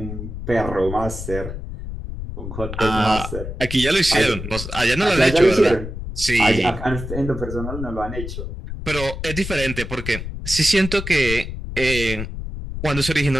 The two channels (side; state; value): left; noise; rumble, 7 dB below the sound